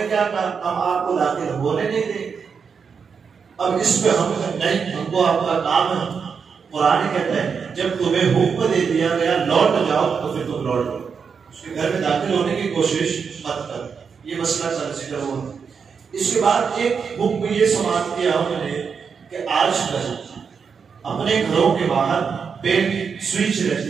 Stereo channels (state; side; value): quieter; left; 6.1 dB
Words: کیا کہا ہم آپ کو داخل ہونے نہیں دیں۔ اب اس پہ ہم نہیں، ہم کو آپ کا کام ہے۔ قرآن کہتا ہے جب تمہیں حکم دے دیا گیا لوٹ جاؤ تو پھر تم لوٹ جاؤ، اس کے گھر میں داخل ہونے کی کوشش مت کر۔ یہ مسئلہ ذکر ہوا۔ اس کے بعد ایک حکم یہ سماعت کیا ہم نے کہ آج کل اپنے گھروں کے باہر پین سوئچ